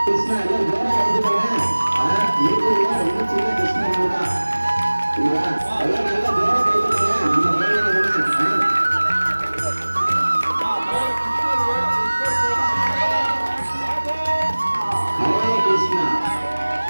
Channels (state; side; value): inverted; both; correlation -1.00